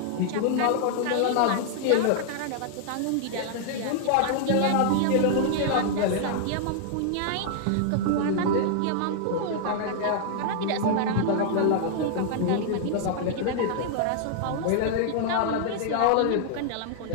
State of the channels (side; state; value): both; different; correlation -0.01